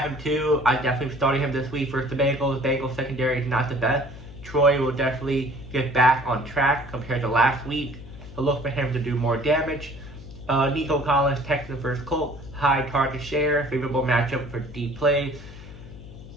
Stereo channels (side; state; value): left; noise; hum, 16 dB below the sound